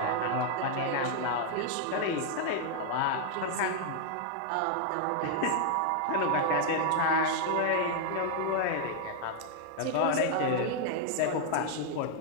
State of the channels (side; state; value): both; different; correlation 0.00